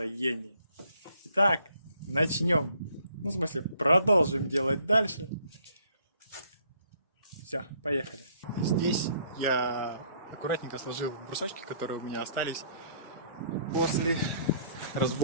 Итак, начнем. Ну, в смысле, продолжим делать дальше. Все, поехали. Здесь я аккуратненько сложил брусочки, которые у меня остались после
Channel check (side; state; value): both; inverted; correlation -0.62